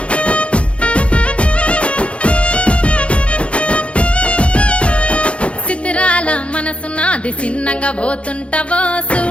చిత్రాల మనసు నాది చిన్నగా పోతుంటావో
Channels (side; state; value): right; late; 0.060 ms